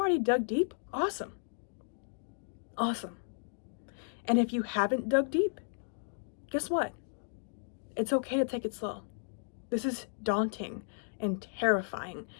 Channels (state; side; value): silent; right; digital silence